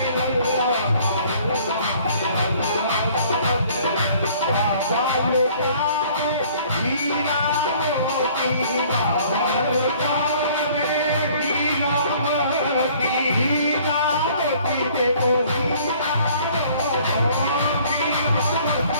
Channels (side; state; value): both; inverted; correlation -0.55